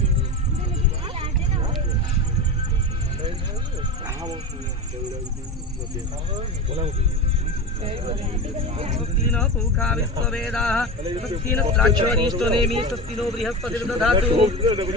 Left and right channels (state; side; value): normal; both; correlation 0.24